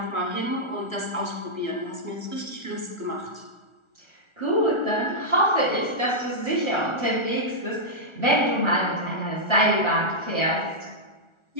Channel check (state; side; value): late; right; 1.4 ms